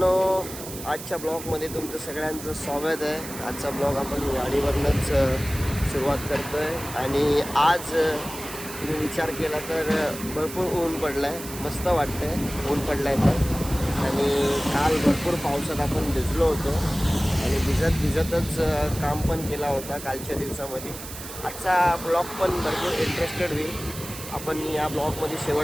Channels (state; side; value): noise; right; hiss, 11 dB below the sound